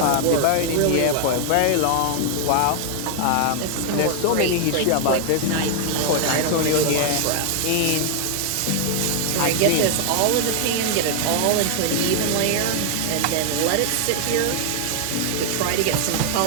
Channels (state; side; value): different; both; correlation 0.00